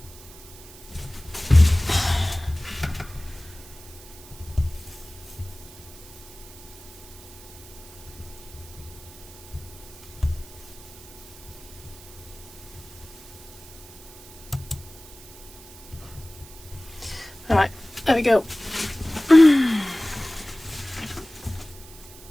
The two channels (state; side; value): noise; right; hiss, 19 dB below the sound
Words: All right, there we go.